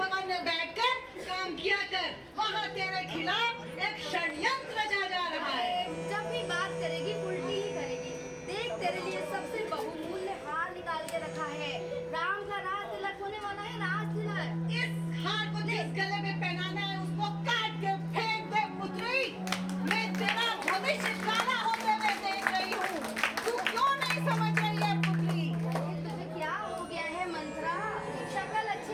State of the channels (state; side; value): identical; both; correlation 1.00